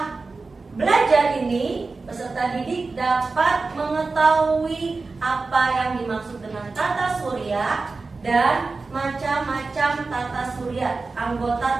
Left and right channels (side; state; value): left; quieter; 3.9 dB